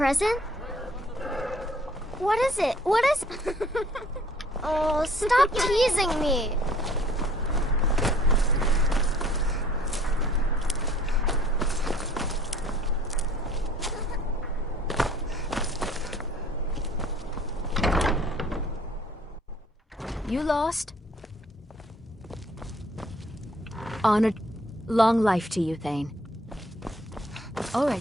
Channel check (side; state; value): both; normal; correlation 0.57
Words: What is it? What is... Oh, stop teasing me. You lost? Honored. Long life to you, Thane. All right,